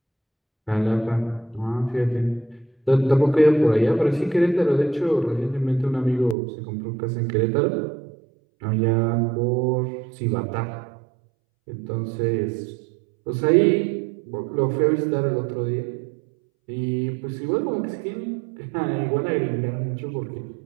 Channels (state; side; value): drops out; left; at 6.4 s